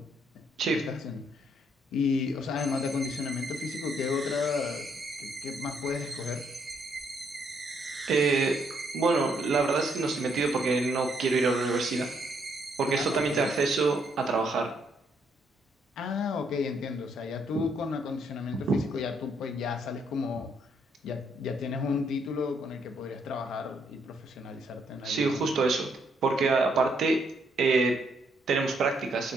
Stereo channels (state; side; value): normal; both; correlation 0.72